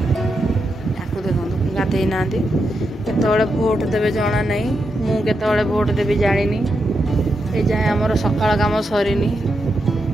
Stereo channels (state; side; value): normal; both; correlation 0.85